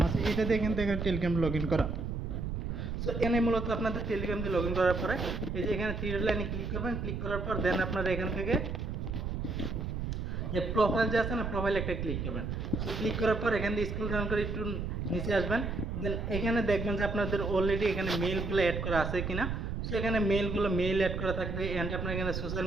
আছে, এটা দিয়ে কিন্তু এখানে টেলিগ্রাম লগ ইন করা। সো এখানে মূলত আপনাদের টেলিগ্রাম দিয়ে লগ ইন করার পরে এই যে এখানে থ্রি লাইনে ক্লিক করবেন, ক্লিক করার পর দেন আপনারা এখান থেকে যে প্রোফাইল যে আছে না, প্রোফাইল একটা ক্লিক করবেন। সো ক্লিক করার পর এখান থেকে স্ক্রল ডাউন করে একটু নিচে আসবেন। দেন এখানে দেখবেন যে আপনাদের অলরেডি এখানে মেইলগুলো অ্যাড করা আছে কিনা। সো এখানে মেইল অ্যাড করা থাকবে, অ্যান্ড আপনার এখানে সোশ্যাল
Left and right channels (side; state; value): right; noise; rumble, 3 dB below the sound